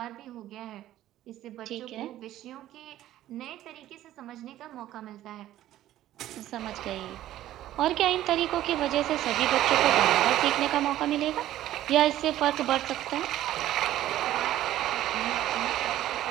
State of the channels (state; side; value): quieter; left; 13.5 dB